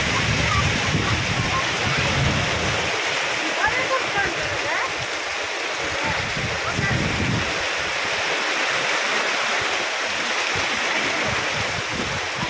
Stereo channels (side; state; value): both; identical; correlation 1.00